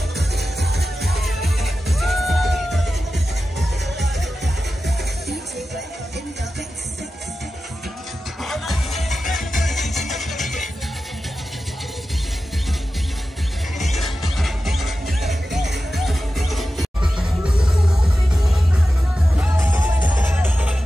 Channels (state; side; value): normal; both; correlation 0.93